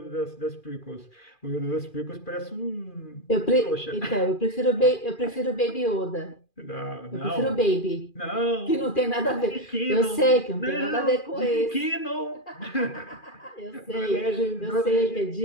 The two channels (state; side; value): late; right; 2.4 ms